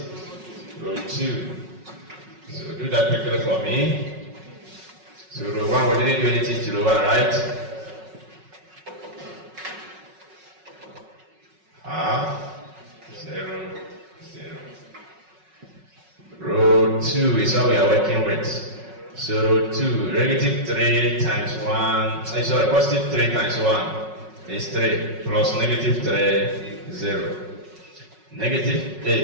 row 2. So do that quickly for me. So row 1, we didn't do anything to row 1, right? Half, 0, 0. Row 2 is what we are working with. So row 2, negative 3 times 1, sorry, positive 3 times 1 is 3, plus negative 3, 0. Negative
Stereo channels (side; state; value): left; late; 5.4 ms